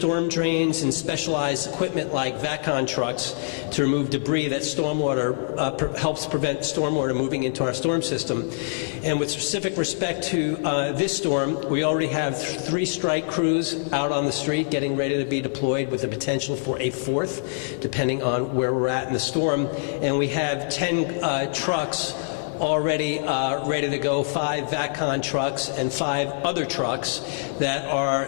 drains and specialized equipment like VACON trucks to remove debris that helps prevent stormwater moving into our storm system. And with specific respect to this storm, we already have 3 strike crews out on the street getting ready to be deployed, with the potential for a 4th, depending on where we're at in the storm. And we have 10 trucks already ready to go, 5 VACON trucks and 5 other trucks that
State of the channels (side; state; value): right; silent; 57 dB below the other